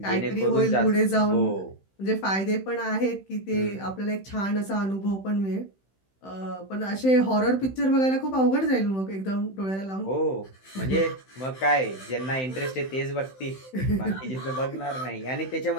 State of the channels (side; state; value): right; late; 16 ms